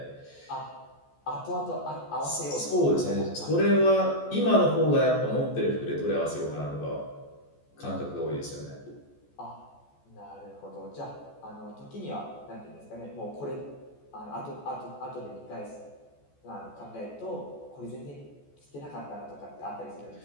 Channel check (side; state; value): right; late; 14 ms